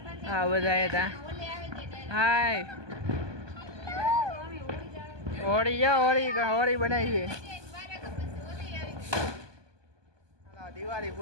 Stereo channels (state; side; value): late; left; 1.2 ms